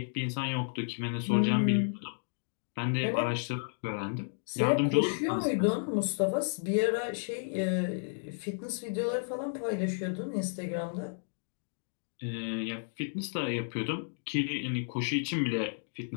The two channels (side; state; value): right; silent; digital silence